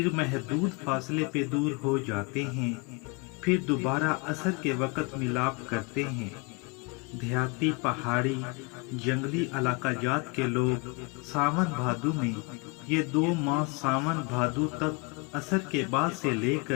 महदूद फासले पे दूर हो जाते हैं, फिर दोबारा असर के वक़्त मिलाप करते हैं। देहाती, पहाड़ी, जंगली इलाका जात के लोग सावन भादु में ये दो माह सावन भादु तक असर के बाद से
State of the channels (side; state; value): right; quieter; 29.5 dB